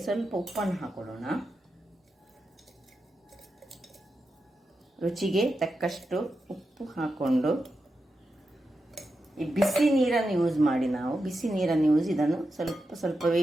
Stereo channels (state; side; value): normal; both; correlation 0.89